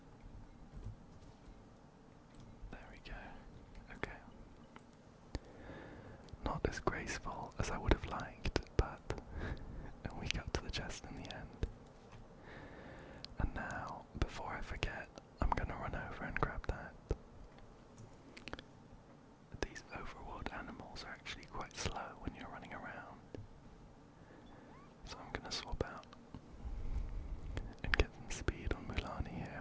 There we go. Okay. Not as graceful as I would have liked, but we got to the chest in the end. And now, before I forget, I'm gonna run over and grab that. These overworld animals are actually quite slow when you're running around. So I'm gonna swap out and get some speed on Mualani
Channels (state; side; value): identical; both; correlation 1.00